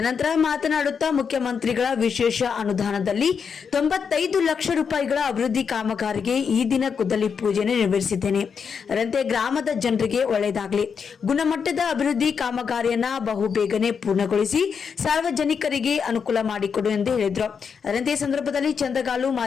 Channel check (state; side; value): quieter; right; 6.4 dB